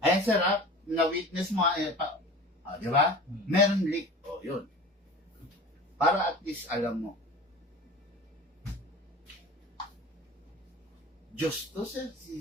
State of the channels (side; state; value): both; normal; correlation 0.37